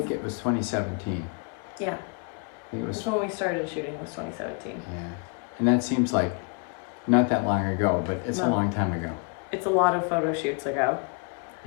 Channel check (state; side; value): quieter; right; 36.5 dB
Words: it was 2017. Yeah. I think it was. That's when we started shooting, was 2017. Yeah. And that seems like not that long ago, but it's a long time ago. It's a lot of photo shoots ago.